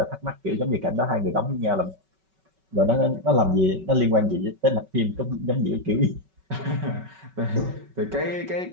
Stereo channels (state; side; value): late; left; 5.3 ms